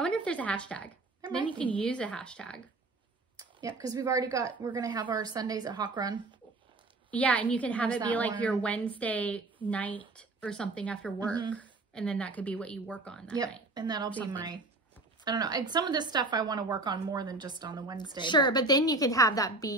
wonder if there's a hashtag. Then you can use a hashtag. Yeah, because we're going to have our Sundays at Hawk Run. Yeah, and you can have it be like your Wednesday night or something after work. And then that could be what you work on that night. And that'll be my, I don't know. Some of this stuff I want to work on more than just on the Wednesday. Sure, but then you can have that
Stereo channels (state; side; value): quieter; left; 3.1 dB